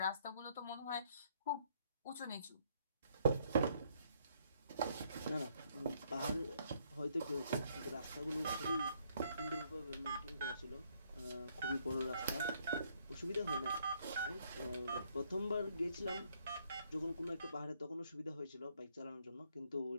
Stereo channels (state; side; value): inverted; both; correlation -0.69